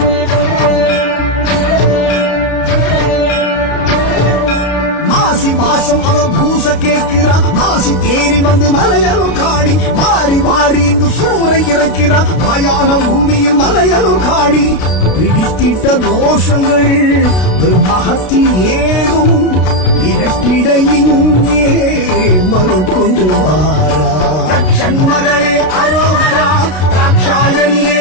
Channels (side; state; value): right; late; 32 ms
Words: மாசம் அவ பூச கேட்கிறா மாசி தேரில் வந்து மலையனும் காணி மாறி மாறி இங்கு சூறை இறக்கிறா மயான பூமியில் மலையனும் காணி பிடித்திட்ட தோஷங்கள் மகத்தி ஏதும் இரட்டிட இங்கே மறுக்கொண்டு வாரா தட்சண்மகளே அரோகரா ராட்சாயணியே